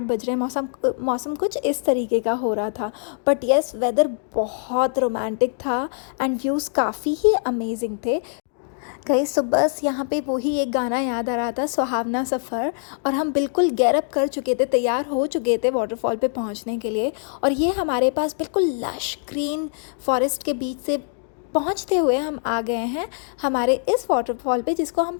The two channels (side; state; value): right; silent; digital silence